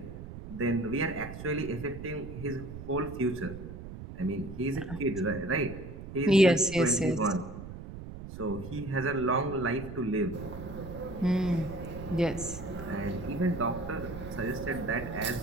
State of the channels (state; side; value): noise; right; rumble, 11 dB below the sound